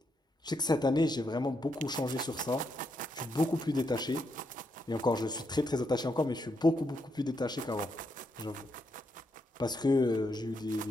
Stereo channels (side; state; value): both; normal; correlation 0.80